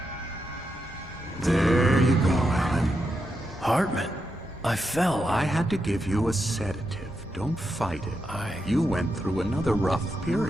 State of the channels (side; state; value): both; normal; correlation 0.85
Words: There you go, Alan. Hartman. I fell. I had to give you a sedative. Don't fight it. You went through another rough